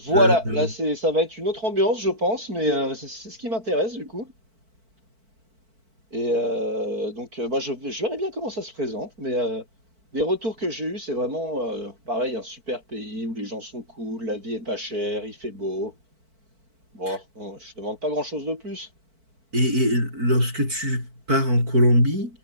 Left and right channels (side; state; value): left; late; 4.5 ms